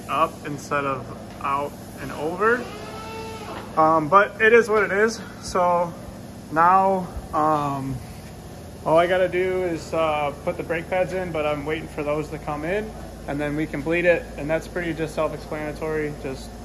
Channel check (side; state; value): both; identical; correlation 1.00